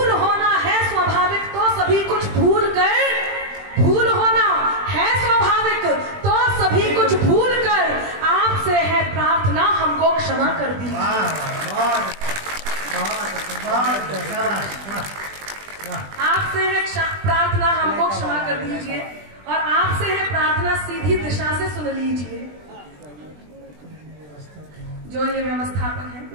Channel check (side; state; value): left; late; 20 ms